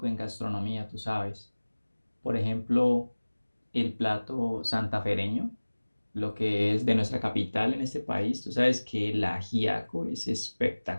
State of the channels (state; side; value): inverted; both; correlation -1.00